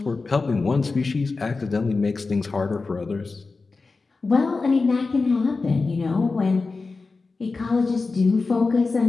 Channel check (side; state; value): right; quieter; 4.0 dB